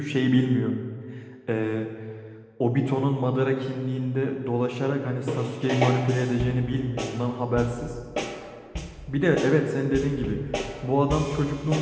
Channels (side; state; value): both; identical; correlation 1.00